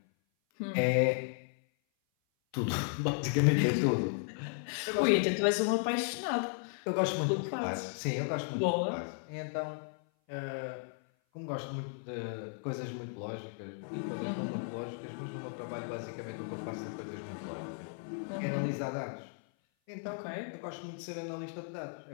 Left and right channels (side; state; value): right; silent; 54 dB below the other